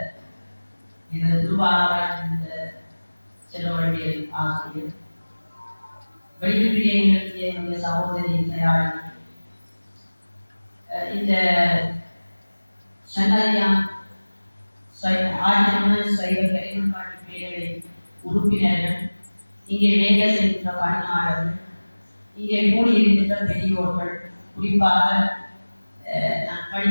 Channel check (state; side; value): inverted; both; correlation -1.00